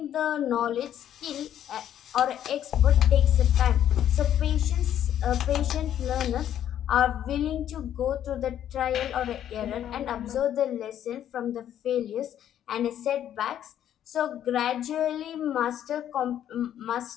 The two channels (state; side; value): quieter; right; 10.6 dB